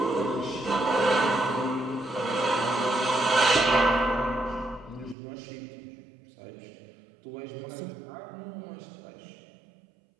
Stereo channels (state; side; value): drops out; left; at 5.2 s